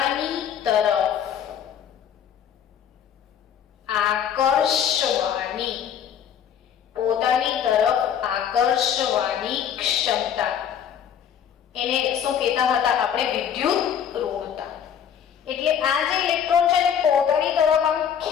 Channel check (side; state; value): right; quieter; 8.7 dB